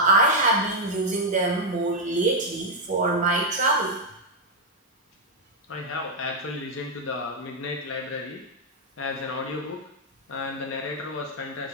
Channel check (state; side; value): normal; both; correlation -0.02